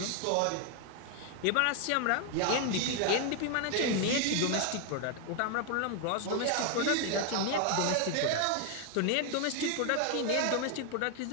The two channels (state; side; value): different; both; correlation 0.00